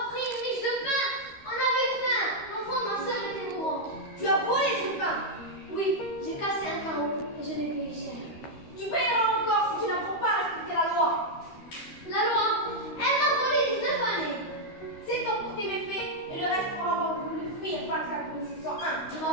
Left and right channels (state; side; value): late; right; 13 ms